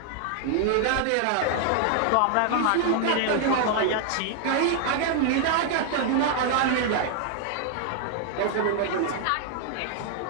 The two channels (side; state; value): both; different; correlation 0.00